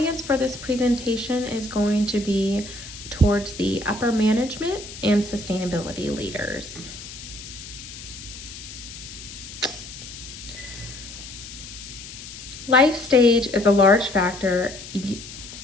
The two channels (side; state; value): left; noise; hiss, 13 dB below the sound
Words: for this presentation is going to be towards the upper management and sustainability leaders. Life stage is a large factor